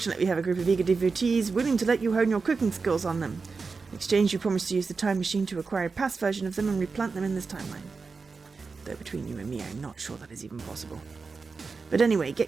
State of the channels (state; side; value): quieter; left; 4.6 dB